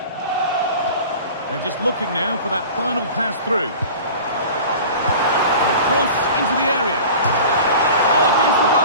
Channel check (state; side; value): inverted; both; correlation -0.39